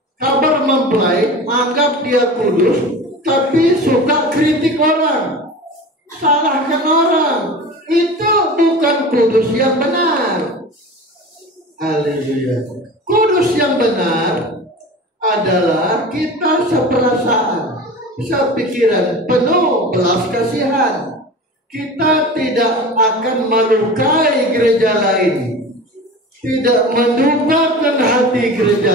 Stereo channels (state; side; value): normal; both; correlation 0.34